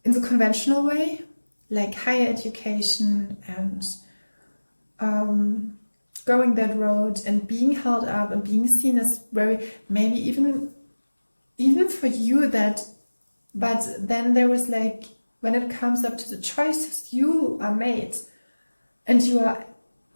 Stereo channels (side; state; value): both; inverted; correlation -1.00